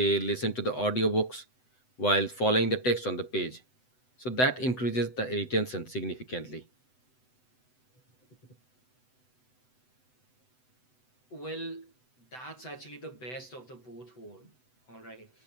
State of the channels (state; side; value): late; right; 7.9 ms